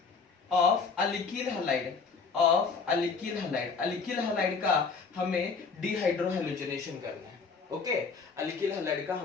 alkyl halide. Alkyl halide का हमें डिहाइड्रोहैलोजनेशन करना है। ओके, अल्किल हलाइड का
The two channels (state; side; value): quieter; right; 5.0 dB